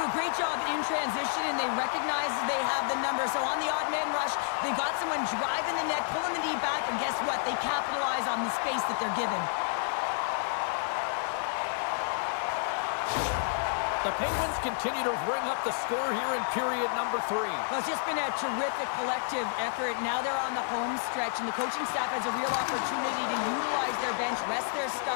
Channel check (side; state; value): right; silent; 58 dB below the other